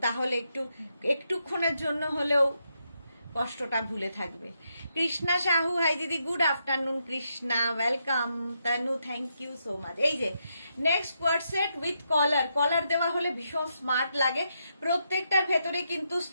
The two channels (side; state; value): both; inverted; correlation -0.81